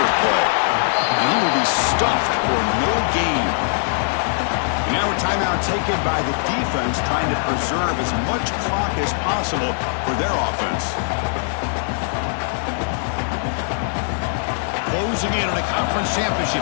play. And he will be stuffed for no gain. Now a timeout taken by the defense, trying to preserve as much clock as possible for their offense. Closing in on a conference championship,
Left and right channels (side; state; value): right; silent; digital silence